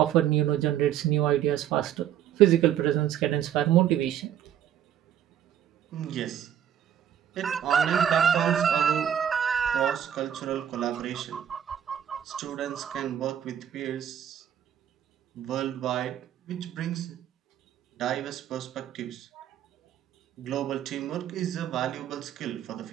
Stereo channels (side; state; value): left; quieter; 10.0 dB